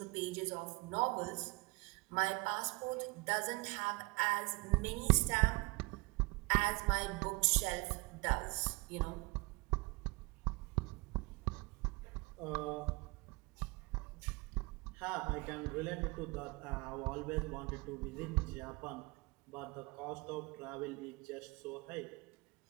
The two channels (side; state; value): left; quieter; 25.8 dB